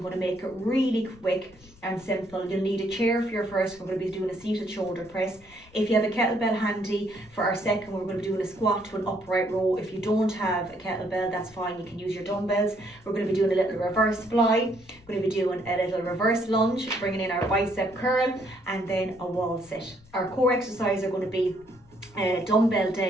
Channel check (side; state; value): left; noise; rumble, 26 dB below the sound